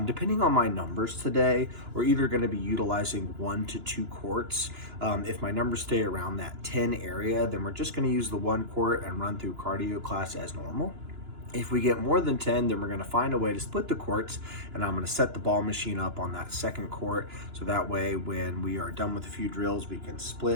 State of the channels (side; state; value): left; late; 2.9 ms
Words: Depending on my numbers today, we're either gonna be utilizing 1 to 2 courts. If my numbers stay around that 10 area, then we're just gonna use the 1 court and run through cardio class as normal. If we get more than 10, then we're gonna find a way to split the courts, and I'm gonna set the ball machine up on that 2nd court, so that way when we are done with a few drills, we can